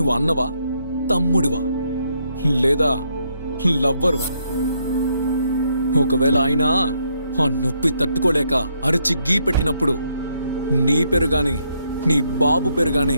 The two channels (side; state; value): both; inverted; correlation -0.75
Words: అన్నవా, తమ్ముడివా, లేదా లవ్వరువా? ఒకవేళ ఆయన ఆ నొప్పి తట్టుకోలేక అరిచి గీ పెట్టినప్పుడు నీ పేరు గాని నీ బాబు పేరు గాని